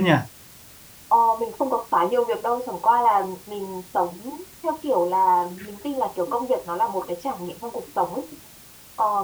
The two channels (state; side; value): identical; both; correlation 1.00